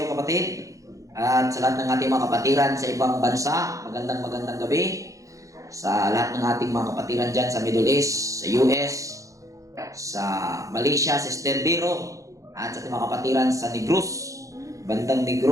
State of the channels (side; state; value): left; late; 0.16 ms